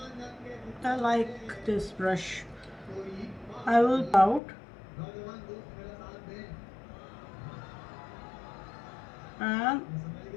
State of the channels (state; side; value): drops out; right; at 4.4 s